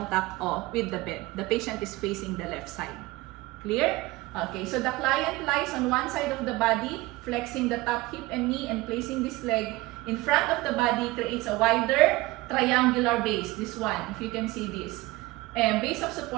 with the bed. The patient is facing the left side. Clear? Okay, so the client lies on one side of the body, flexing the top hip and knee and placing this leg in front of the body, creates a wider triangular base. This one, if you can see this. And base of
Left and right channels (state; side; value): quieter; left; 20.3 dB